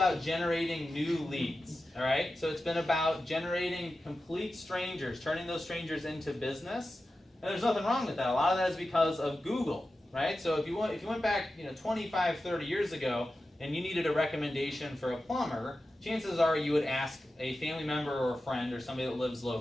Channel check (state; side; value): normal; both; correlation 0.93